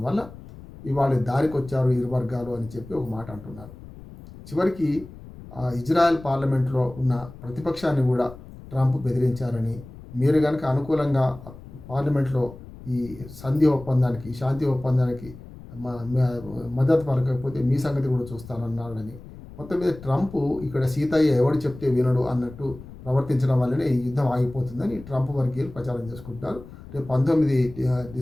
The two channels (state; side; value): noise; left; rumble, 17 dB below the sound